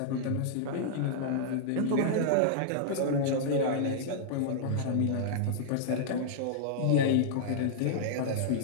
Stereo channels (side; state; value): both; different; correlation -0.02